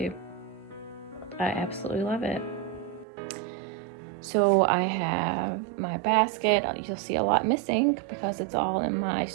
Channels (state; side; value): drops out; left; at 3.1 s